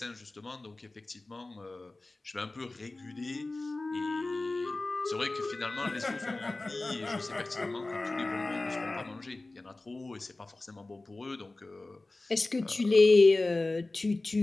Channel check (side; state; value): right; quieter; 3.0 dB